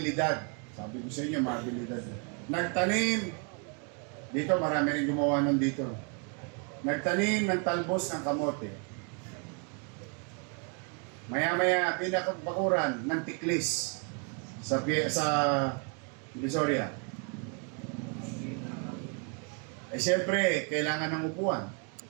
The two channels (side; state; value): left; quieter; 37.7 dB